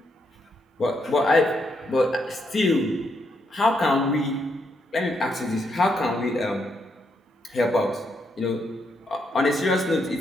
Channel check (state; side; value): normal; both; correlation 0.78